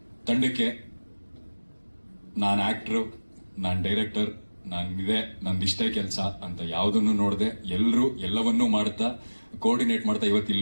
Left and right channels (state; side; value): inverted; both; correlation -1.00